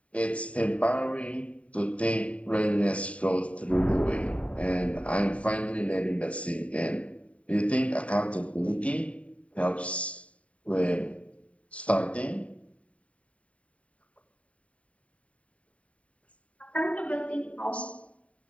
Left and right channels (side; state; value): right; late; 0.065 ms